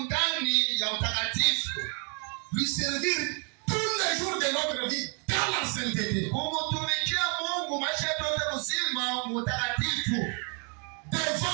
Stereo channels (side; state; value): left; quieter; 36.8 dB